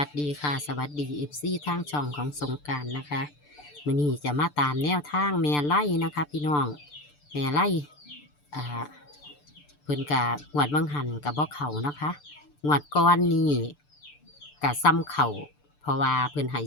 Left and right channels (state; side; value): late; right; 6.8 ms